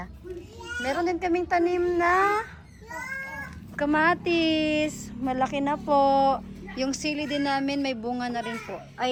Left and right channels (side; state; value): both; identical; correlation 1.00